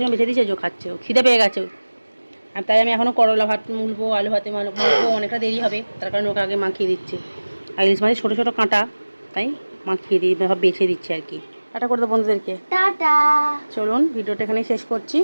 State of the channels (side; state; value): both; inverted; correlation -1.00